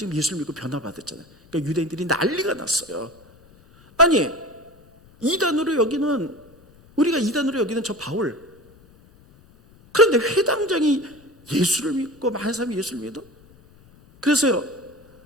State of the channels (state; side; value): noise; left; rumble, 27 dB below the sound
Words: 예수를 믿고 변화받았잖아요. 그러니까 유대인들이 난리가 났어요. 아니, 이단으로 여기는, 우리가 이단으로 여기는 저 바울, 그런데 회당장이 예수를 믿고 많은 사람이 예수를 믿어? 그래서요,